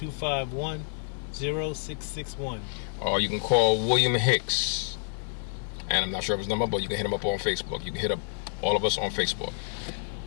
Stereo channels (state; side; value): silent; right; digital silence